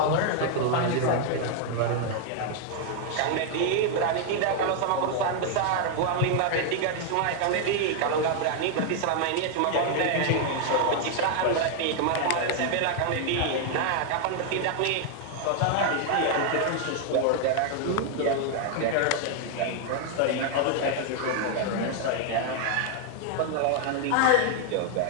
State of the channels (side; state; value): both; different; correlation 0.00